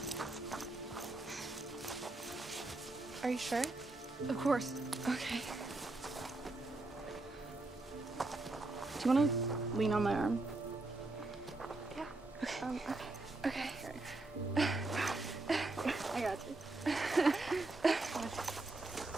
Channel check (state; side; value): quieter; left; 3.0 dB